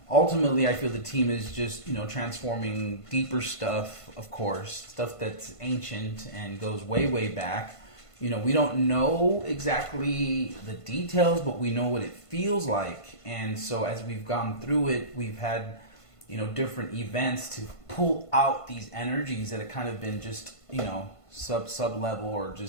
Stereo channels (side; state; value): right; late; 1.5 ms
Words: Ultimately, I feel the team is just, transforming deeper stuff, of course, stuff that's ancient and goes way, way back. We don't know exactly the details, but we know what it feels like. And so as we've gone through it, we've had, different events to pull out these energies that have kind of been just, sub level or